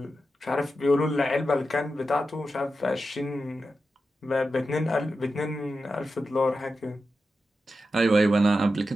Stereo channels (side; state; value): both; normal; correlation 0.90